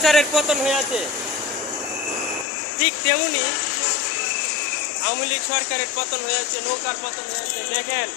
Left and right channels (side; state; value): right; drops out; at 2.5 s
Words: পতন হয়ে আছে, ঠিক তেমনি আওয়ামী লীগ সরকারের পতন হয়েছে, নৌকার পতন হয়েছে। দেখেন,